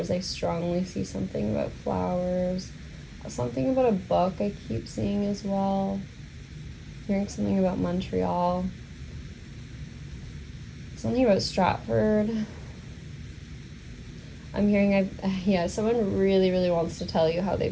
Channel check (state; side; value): identical; both; correlation 1.00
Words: I strongly see something about flowers. Something about a book I keep seeing as well. Hearing something about Montreal. Something about Stratford. I'm hearing someone really, really wants to tell you how